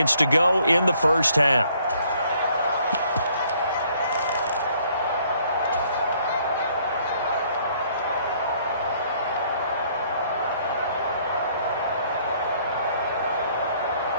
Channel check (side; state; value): both; inverted; correlation -0.64